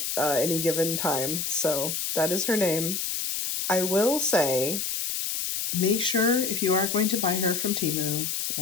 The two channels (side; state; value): left; noise; hiss, 2 dB below the sound